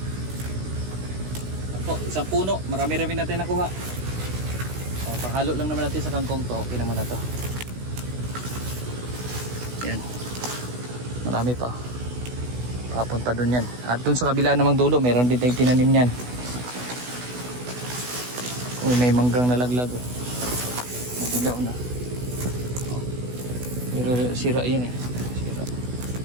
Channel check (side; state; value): left; late; 16 ms